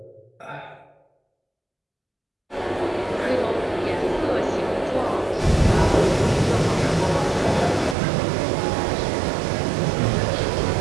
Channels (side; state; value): left; drops out; at 8.0 s